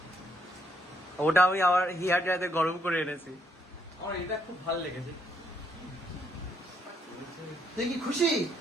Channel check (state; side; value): normal; both; correlation 0.74